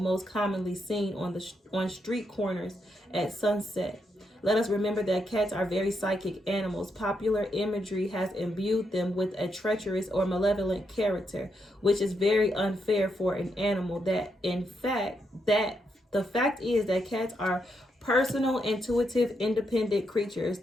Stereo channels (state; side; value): normal; both; correlation 0.80